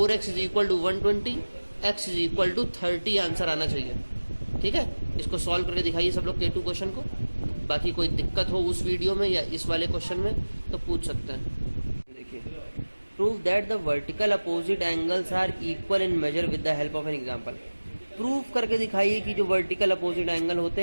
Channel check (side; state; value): both; inverted; correlation -1.00